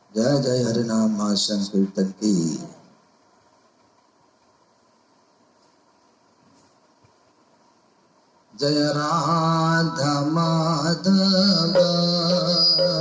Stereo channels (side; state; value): both; identical; correlation 1.00